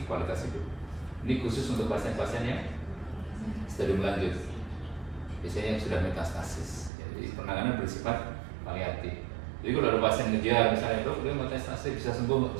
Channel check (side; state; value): left; drops out; at 6.9 s